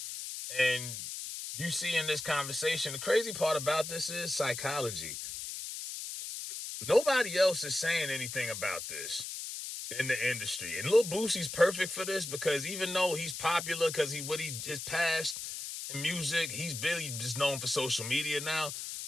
And you see in this conversation, the crazy part about this is psychology. Nobody else is saying anything about this in the industry. And Lil Boosie's perfect for this because even though he's popular because his past in music, he's really just known for social media now.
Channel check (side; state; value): left; noise; hiss, 7 dB below the sound